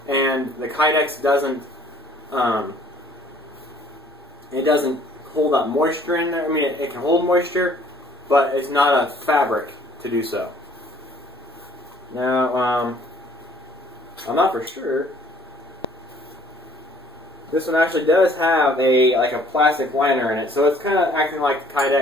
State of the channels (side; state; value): both; normal; correlation 0.58